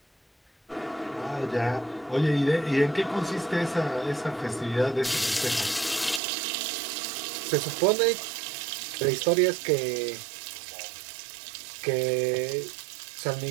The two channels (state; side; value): drops out; left; at 6.2 s